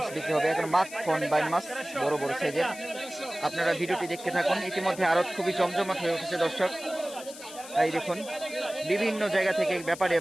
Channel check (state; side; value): noise; left; hiss, 15 dB below the sound